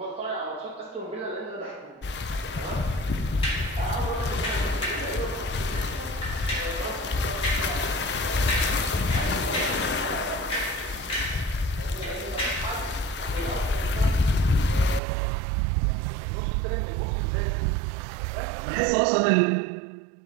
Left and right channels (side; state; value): left; drops out; at 15.0 s